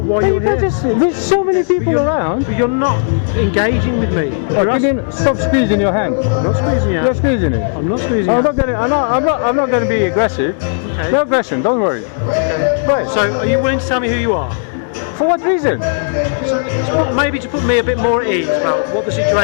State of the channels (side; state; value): right; silent; digital silence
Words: why Hey, you're you can't here. just, there's so many people around. But you're not engaging with me. Oh, You're can you stop squeezing your hand? I'm not squeezing you. You're squeezing it. I'm not squeezing I'm you. not gonna. I'm not gonna be aggressive. Okay. No aggression. Don't worry. Right. So are you willing to tell me who you are? For what reason? Maybe to put me a bit more at ease about what the